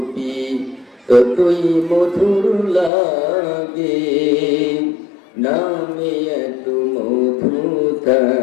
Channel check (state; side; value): drops out; right; at 2.9 s